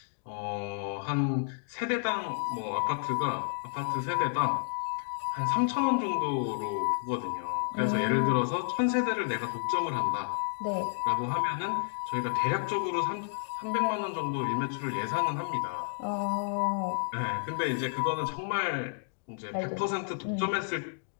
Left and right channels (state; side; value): silent; right; digital silence